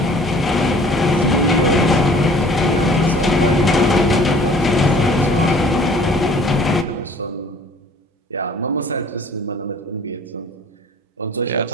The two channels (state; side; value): normal; both; correlation 0.51